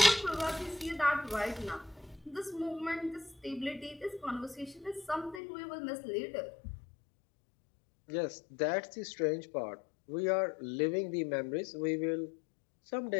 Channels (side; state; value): right; drops out; at 5.4 s